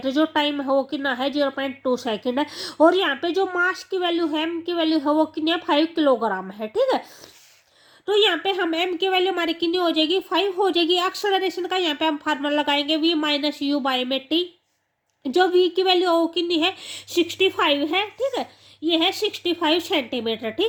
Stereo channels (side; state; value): both; identical; correlation 1.00